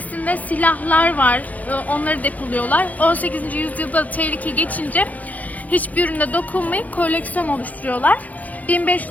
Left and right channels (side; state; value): right; late; 0.077 ms